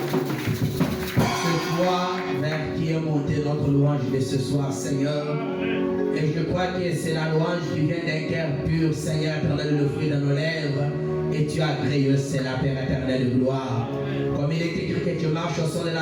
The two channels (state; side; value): identical; both; correlation 1.00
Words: C'est toi, Père, qui est monté notre louange de ce soir, Seigneur. Et je crois que c'est la louange qui vient d'un cœur pur, Seigneur éternel, le fruit de nos lèvres. Et tu as créé, c'est la Père éternelle de gloire. Comme il est écrit que tu marches au son de